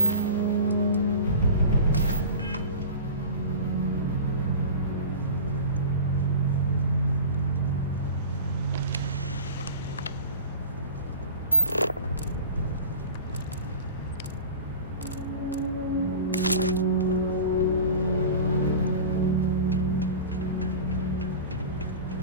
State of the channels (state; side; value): inverted; both; correlation -0.34